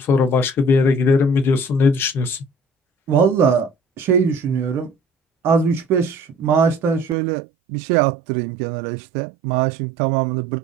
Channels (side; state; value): left; drops out; at 7.2 s